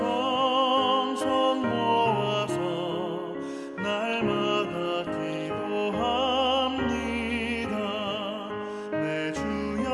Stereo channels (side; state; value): both; identical; correlation 1.00